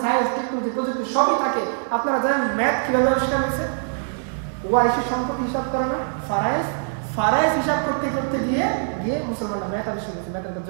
সায়েন্স, টেকনোলজি, প্রযুক্তি সবই থাকে। আপনারা জানেন ম্যাথ কিভাবে আবিষ্কার হয়েছে? ওয়ারিশের সম্পত্তি হিসাব করে না, ফারাইজ হিসাব করতে করতে গিয়ে মুসলমানরা মেথ আবিষ্কার করছে, মেথের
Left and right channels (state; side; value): silent; left; 58 dB below the other